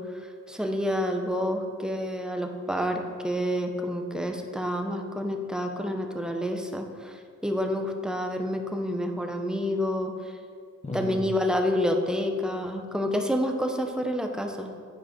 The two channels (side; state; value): both; normal; correlation 0.74